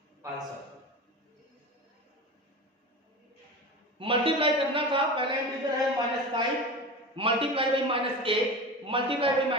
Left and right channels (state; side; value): normal; both; correlation 0.29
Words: आंसर मल्टीप्लाई करना था, पहला इंटीजर है -5 मल्टीप्लाई बाई -8 मल्टीप्लाई बाई